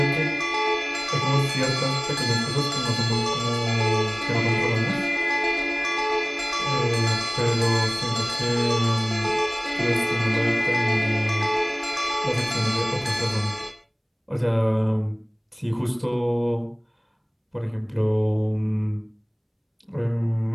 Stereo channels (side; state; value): both; identical; correlation 1.00